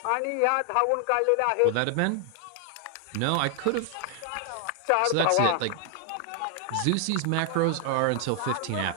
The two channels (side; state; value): both; different; correlation 0.00